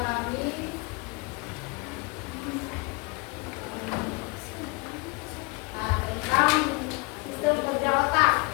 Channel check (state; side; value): quieter; right; 28.3 dB